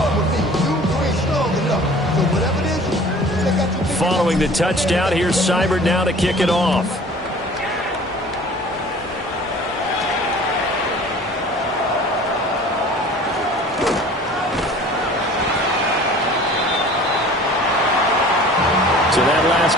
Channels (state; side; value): normal; both; correlation 0.46